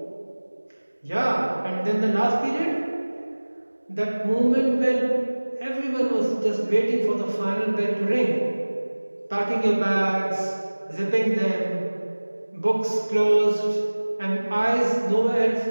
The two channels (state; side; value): inverted; both; correlation -1.00